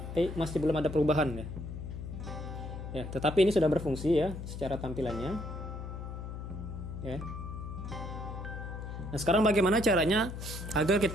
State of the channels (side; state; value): left; noise; hum, 8 dB below the sound